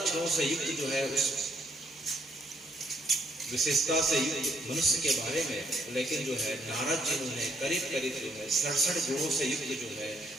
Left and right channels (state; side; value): normal; both; correlation 0.69